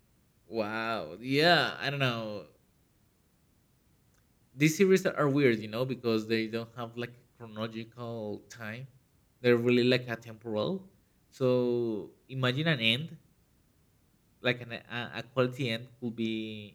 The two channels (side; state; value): both; identical; correlation 1.00